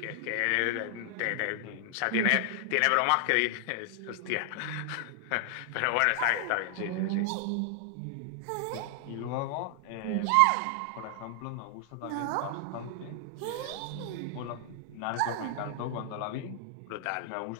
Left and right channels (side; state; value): both; different; correlation 0.00